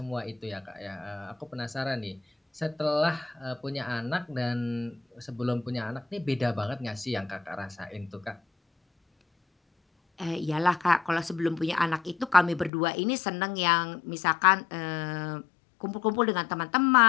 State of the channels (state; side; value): drops out; right; at 12.7 s